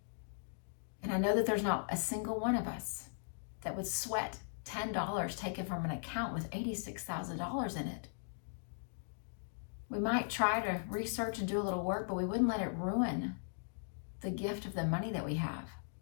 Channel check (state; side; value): silent; right; digital silence